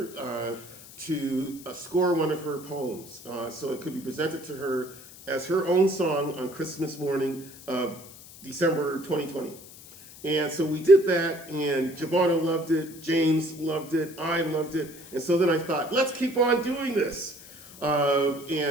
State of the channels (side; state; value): left; noise; hiss, 18 dB below the sound